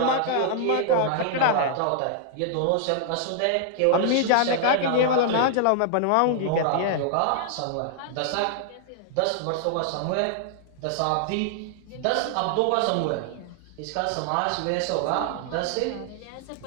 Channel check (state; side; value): different; both; correlation -0.01